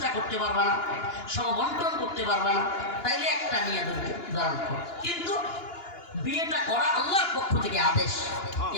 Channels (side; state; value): right; late; 2.9 ms